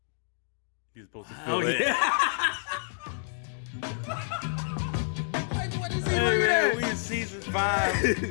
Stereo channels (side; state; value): right; silent; digital silence